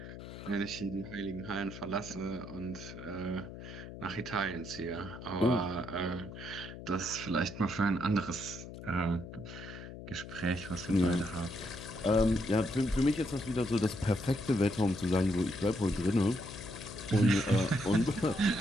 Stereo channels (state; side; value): noise; left; hum, 12 dB below the sound